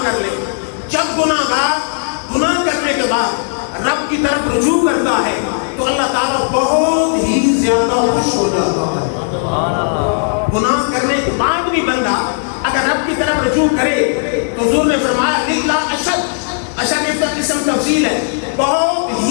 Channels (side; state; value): right; silent; 60 dB below the other